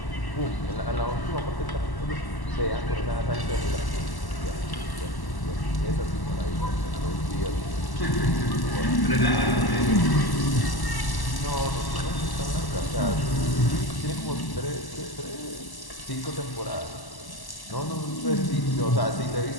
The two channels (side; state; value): right; late; 1.1 ms